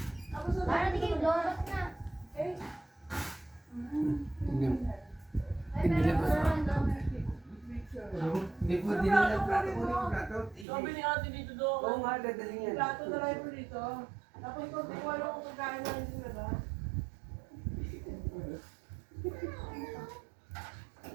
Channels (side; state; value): left; drops out; at 10.7 s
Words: Tapos na Para di kayo lumabas na. Eh, Hindi. Ay, Hindi meron labas. ko naman doon. Hindi po din nila plato mo yung plato. Sabi ni ate dito doon. Oo nga, dadaling yan. plato na lang mo dito. Tapos kung di ko alam kung pagkain na hindi na ba?